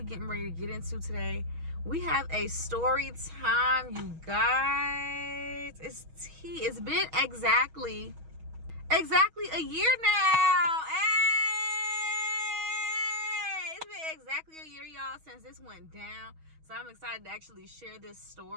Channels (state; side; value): late; left; 6.3 ms